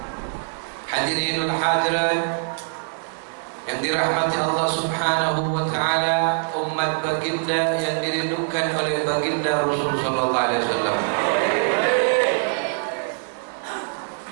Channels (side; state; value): left; silent; digital silence